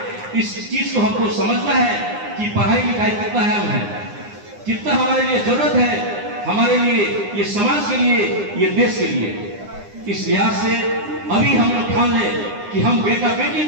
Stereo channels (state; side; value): late; left; 9.8 ms